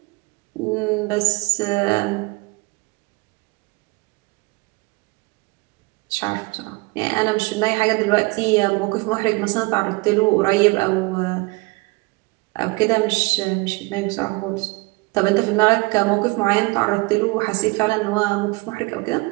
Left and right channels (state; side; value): quieter; left; 25.3 dB